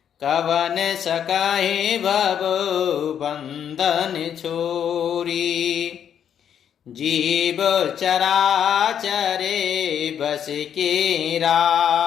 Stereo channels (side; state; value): right; quieter; 8.9 dB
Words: कवन सकाहि भव बंधन छोरी। जीव चराचरे बस के